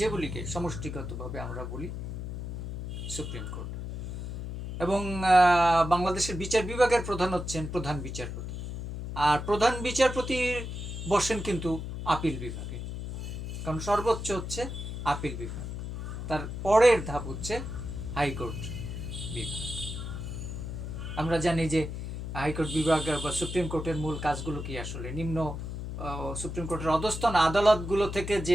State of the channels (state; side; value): noise; left; hum, 6 dB below the sound